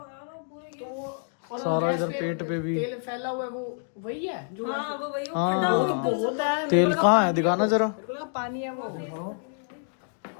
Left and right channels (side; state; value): right; silent; digital silence